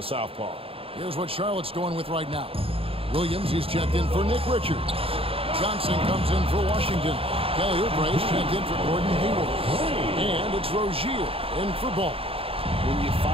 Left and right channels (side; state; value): left; late; 0.27 ms